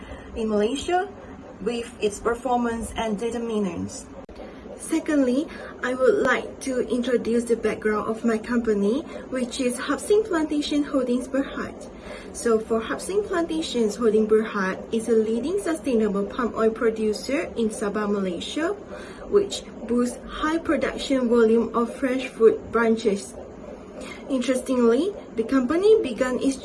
in Malaysia with its performance and determinants. Secondly, I would like to introduce the background of my company, which is Hapsing Plantation Holdings Bwrr. So for Hapsing Plantations Holding Bwrr is a leading sustainable palm oil producer in Sabah, Malaysia, which boasts high production volume of fresh fruit branches. Interestingly, the company began its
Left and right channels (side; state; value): both; identical; correlation 1.00